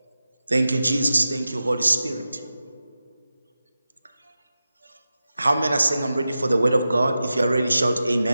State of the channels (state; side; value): inverted; both; correlation -0.93